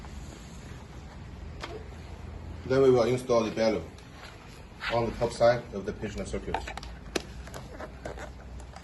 Then we will install the bellow on the top side of the patient circuit.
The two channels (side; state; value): both; identical; correlation 1.00